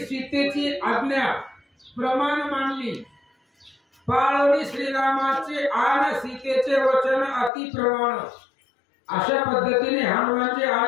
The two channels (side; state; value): right; drops out; at 7.5 s